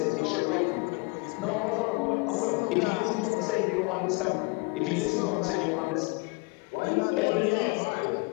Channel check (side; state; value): right; quieter; 28.8 dB